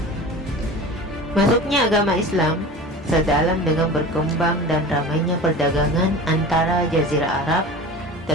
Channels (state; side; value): normal; both; correlation 0.36